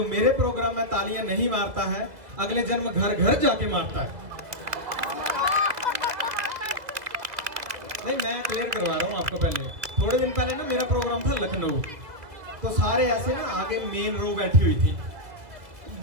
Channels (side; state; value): left; late; 2.2 ms